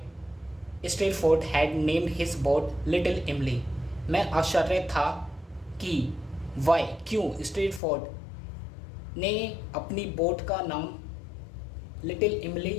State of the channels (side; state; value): right; drops out; at 7.8 s